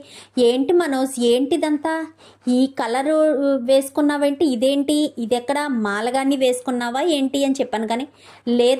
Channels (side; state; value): both; identical; correlation 1.00